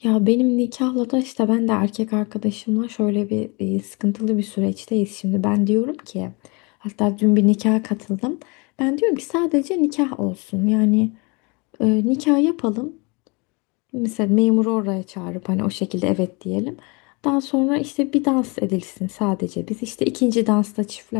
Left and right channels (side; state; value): right; quieter; 29.3 dB